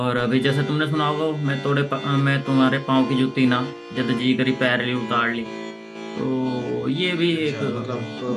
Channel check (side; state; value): both; identical; correlation 1.00